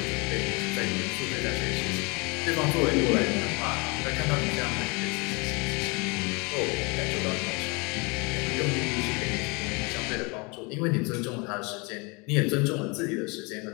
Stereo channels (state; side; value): quieter; right; 29.1 dB